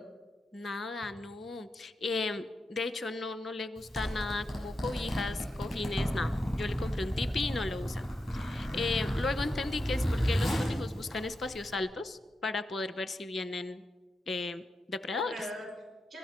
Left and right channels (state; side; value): normal; both; correlation 0.87